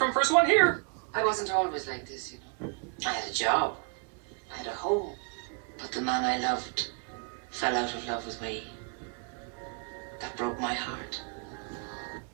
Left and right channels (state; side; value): quieter; left; 33.8 dB